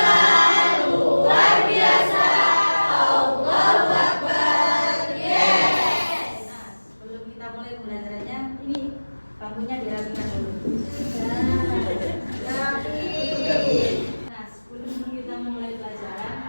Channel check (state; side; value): inverted; both; correlation -1.00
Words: luar biasa. Allahu Akbar. Yes. Nah, sebelum kita mulai pembelajarannya, ini bangkunya dirapikan dulu. Nah, sebelum kita mulai pelajaran,